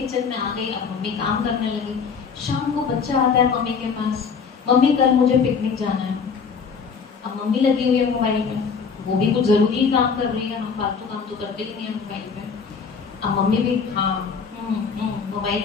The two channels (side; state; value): right; quieter; 5.8 dB